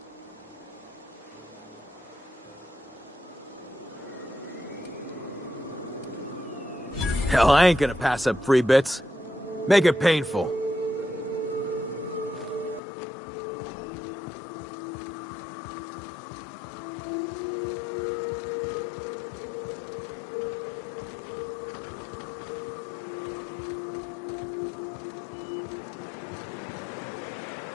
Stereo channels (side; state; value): right; drops out; at 12.8 s